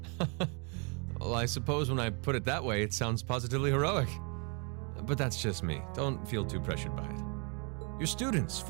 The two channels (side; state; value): left; quieter; 35.5 dB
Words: Well, I suppose when I put it that way, it sounds positively heroic. But that's just me. Don't feel too pressured by it. Your students,